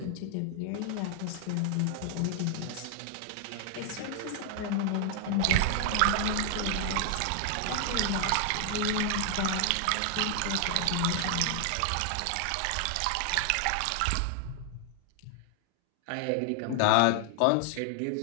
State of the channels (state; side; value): different; both; correlation 0.00